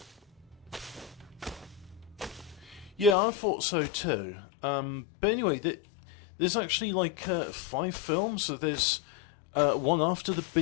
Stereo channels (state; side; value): drops out; right; at 3.2 s